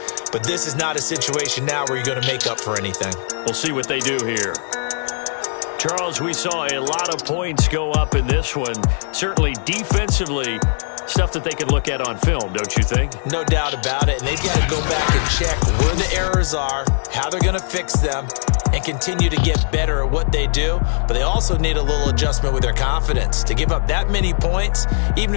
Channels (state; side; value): silent; right; digital silence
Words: But this is not a situation now where you're going to make up for anything. We'll see what they do here. Charles, we saw a lot of points go up in this one. Certainly defensively, stuff that they can look at on film, don't you think? No doubt about it. And they've got to go back and check where the errors are, how they're going to fix them, and continue to get better at what they do. But they also need a little adjustment with their confidence. To give up that many points, even